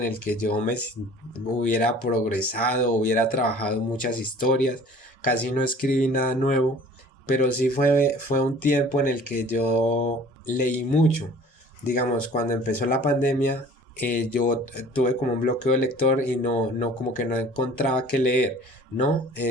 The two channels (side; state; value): both; normal; correlation 0.48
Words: el que yo hubiera progresado, hubiera trabajado muchas historias, casi no escribí nada nuevo, pero sí fue un tiempo en el que yo leí mucho. Digamos, cuando empezó la pandemia, yo tuve como un bloqueo de lector y no, como que no encontraba qué leer, ¿no?